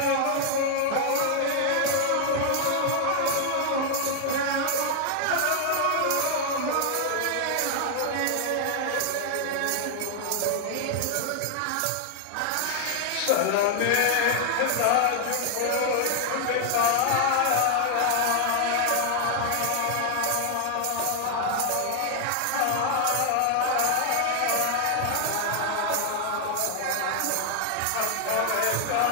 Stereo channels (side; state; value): both; different; correlation 0.00